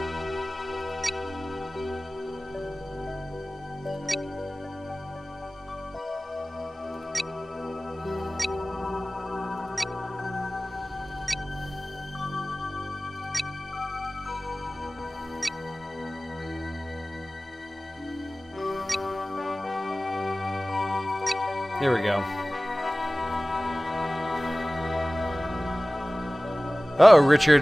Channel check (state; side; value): normal; both; correlation 0.98